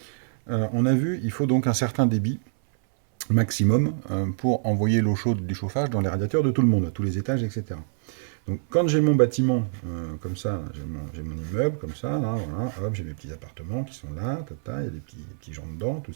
On a vu, il faut donc un certain débit maximum pour envoyer l'eau chaude du chauffage dans les radiateurs de tout le monde, à tous les étages, etc. Donc quand j'ai mon bâtiment comme ça, j'ai mon immeuble comme ça, là, voilà, hop, j'ai mes petits appartements qui sont là, tata, il y a des petits gens dedans, tout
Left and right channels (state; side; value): silent; left; 58 dB below the other